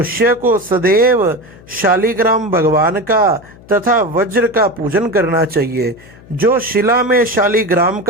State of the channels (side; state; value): left; noise; hum, 23 dB below the sound